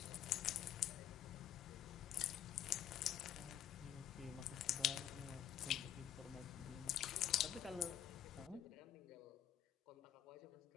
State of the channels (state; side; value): quieter; right; 10.6 dB